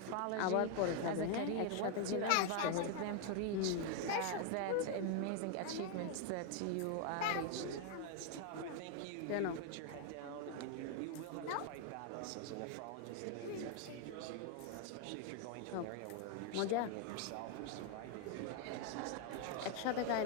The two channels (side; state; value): both; different; correlation 0.00